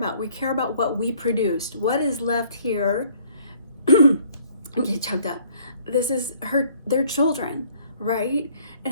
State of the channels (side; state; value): both; inverted; correlation -0.59